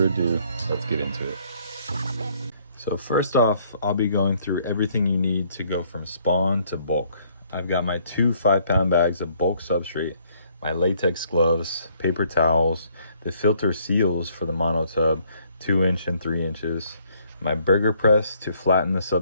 ado, let's get into it. So first off, I'll be going through everything you need to go from spawn to bulk. I've got my 2 5-pound bags of bulk substrate, my latex gloves, paper towels, the filter seals for the monotub, 2-inch and 3 inches, my burger press to flatten the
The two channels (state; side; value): inverted; both; correlation -0.65